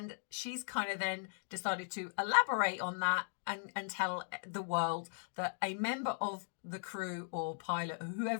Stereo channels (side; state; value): right; silent; digital silence